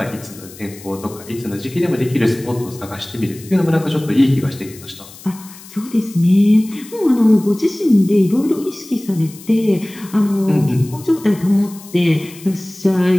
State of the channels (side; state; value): left; noise; hiss, 19 dB below the sound